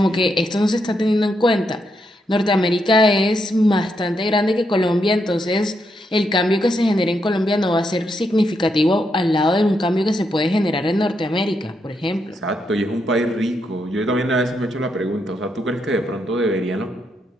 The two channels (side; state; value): both; normal; correlation 0.80